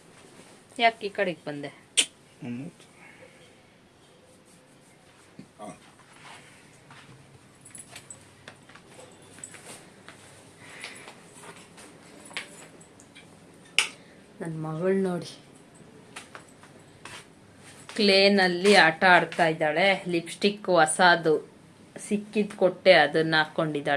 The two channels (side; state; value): both; identical; correlation 1.00